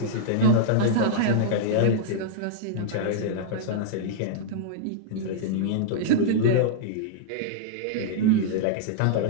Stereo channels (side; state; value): both; different; correlation -0.02